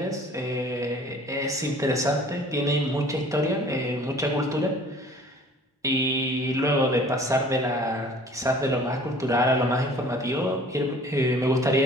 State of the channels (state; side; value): normal; both; correlation 0.50